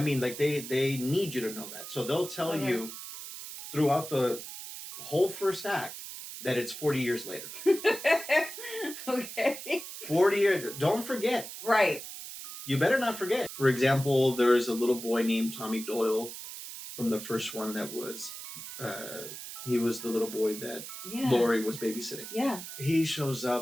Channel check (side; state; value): right; noise; hiss, 10 dB below the sound